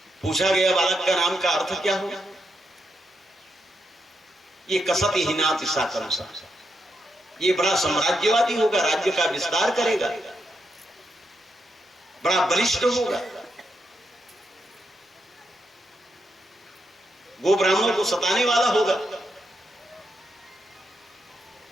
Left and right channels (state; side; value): normal; both; correlation 0.82